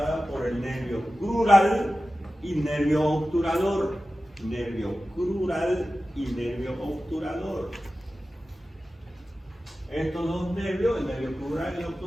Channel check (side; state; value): both; normal; correlation 0.94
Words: por el nervio crural y nervio obturador. Nervio crural y nervio obturador. Estos dos nervios, el nervio crural y el